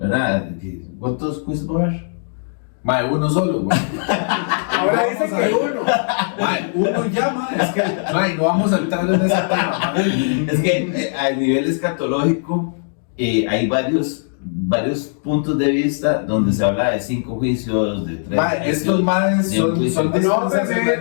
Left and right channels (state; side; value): silent; right; digital silence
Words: ¿Cuántos juicios va a haber? Mae, uno solo, güey. Ahora dicen que uno. Mae, uno ya, mae, es que, mae, no vamos a entrar en ese tema, mae. Es que a nivel escatológico hay varios puntos de vista donde se habla de 5 juicios, de 3 Mae, estos maes son No me